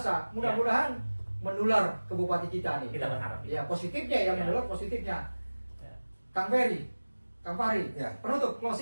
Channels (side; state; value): both; inverted; correlation -1.00